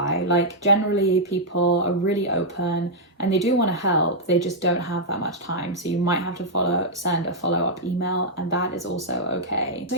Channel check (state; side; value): normal; both; correlation -0.06